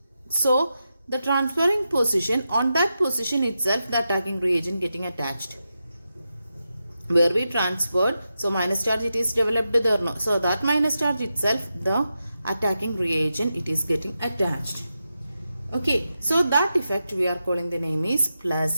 So the transferring position, on that position itself the attacking reagent getting attached. Where we transferred, so minus charge it is developed there no. So that minus charge itself the attacking reagent it is getting attached. Okay, so that effect we are calling the name is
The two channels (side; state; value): both; inverted; correlation -0.89